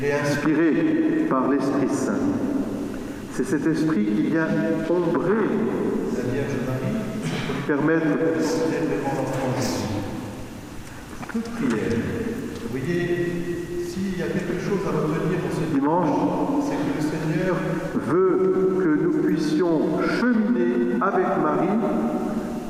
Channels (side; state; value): both; identical; correlation 1.00